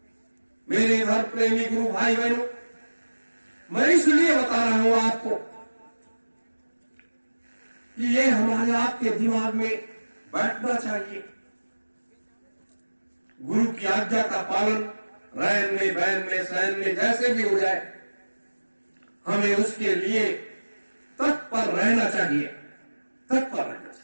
मेरे धर्म प्रेमी गुरु भाई बहनों, मैं इसलिए बता रहा हूं आपको कि ये हमारे आपके दिमाग में बैठना चाहिए। गुरु की आज्ञा का पालन रैन में, बैन में, सैन में जैसे भी हो जाए, हमें उसके लिए तत्पर रहना चाहिए, तत्पर रहना चाहिए।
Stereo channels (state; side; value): inverted; both; correlation -1.00